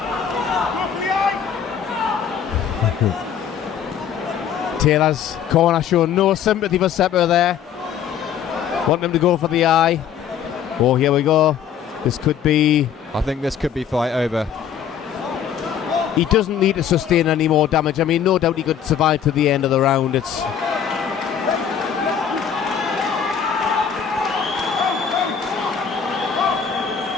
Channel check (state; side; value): quieter; right; 8.3 dB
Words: Taylor's corner showing no sympathy for Cepur there. Wanting him to go for the eye. Oh, here we go. This could be... I think this could be fight over. He doesn't need to sustain any more damage. I mean, no doubt he could survive to the end of the round. It's...